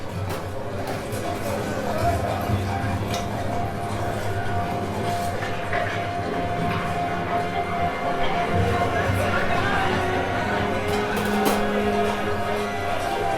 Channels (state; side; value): identical; both; correlation 1.00